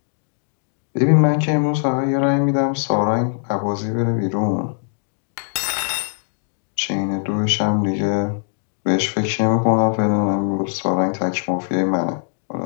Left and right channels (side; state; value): right; silent; digital silence